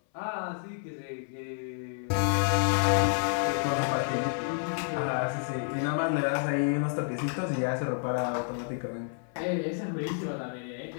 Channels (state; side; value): silent; right; 58 dB below the other